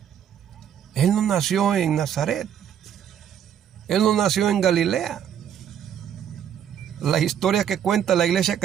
Él no nació en Nazaret. Él no nació en Galilea. La historia que cuenta la Iglesia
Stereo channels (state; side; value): quieter; left; 9.3 dB